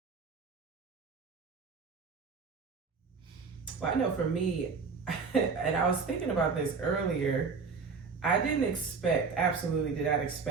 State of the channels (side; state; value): left; quieter; 5.0 dB